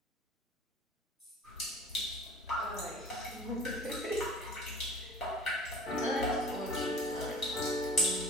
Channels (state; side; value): normal; both; correlation 0.45